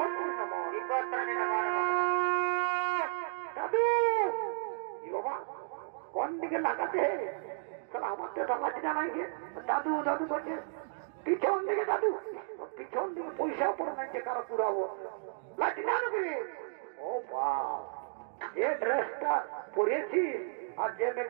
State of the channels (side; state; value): left; silent; digital silence